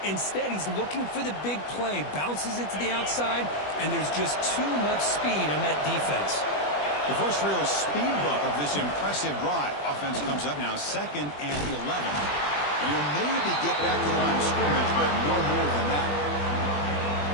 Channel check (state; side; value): late; right; 20 ms